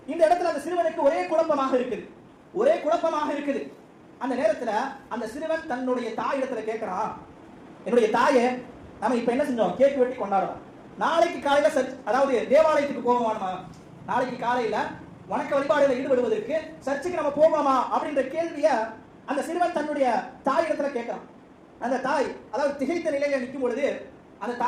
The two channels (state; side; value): identical; both; correlation 1.00